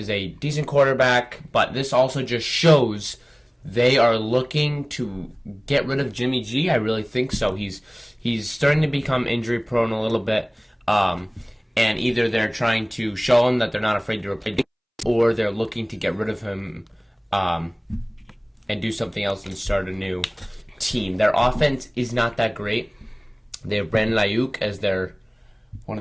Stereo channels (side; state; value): both; identical; correlation 1.00